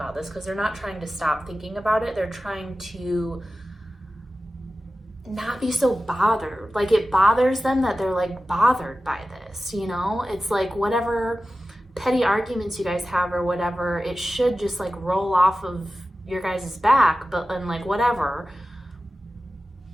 this, because they're not trying to stop thinking about it. They're trying to not be so bothered. Like, it bothers them that they're like bothered by this, you know? It's like whatever petty arguments you guys have or whatever, it should just like roll off of your guys' back, but and like whatever.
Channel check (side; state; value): both; normal; correlation 0.94